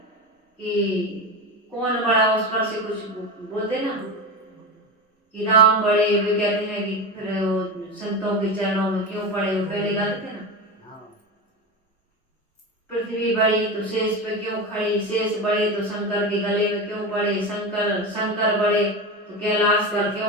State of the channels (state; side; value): normal; both; correlation 0.21